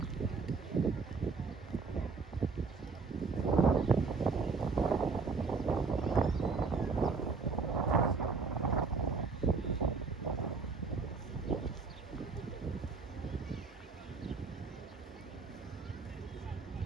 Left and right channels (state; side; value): quieter; left; 4.6 dB